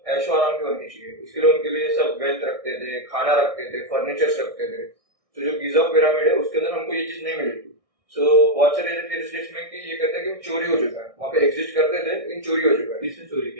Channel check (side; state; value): left; late; 1.6 ms